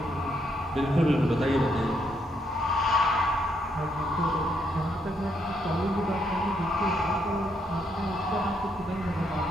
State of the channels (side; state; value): both; normal; correlation 0.75